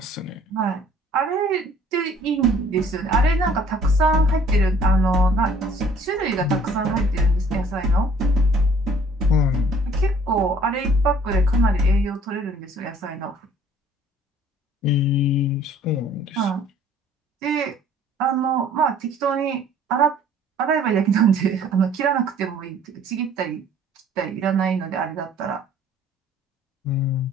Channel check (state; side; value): normal; both; correlation 0.56